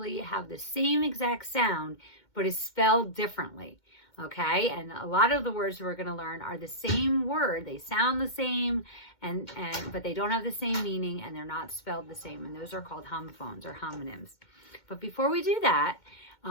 have the same exact sound, but is spelled differently. Okay, and a lot of the words we're going to learn are the same word. They sound the same, but they don't have the same meaning, and they're not spelled the same. And those are called homophones or homonyms. But before we do that,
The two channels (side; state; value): right; late; 2.1 ms